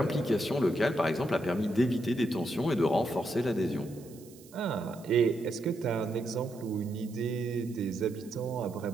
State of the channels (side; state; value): right; noise; hiss, 23 dB below the sound